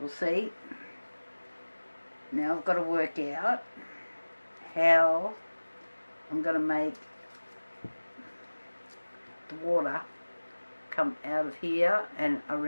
We'll see. Now I've got to work out how I'm going to make the water come out of here and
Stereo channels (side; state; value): both; inverted; correlation -1.00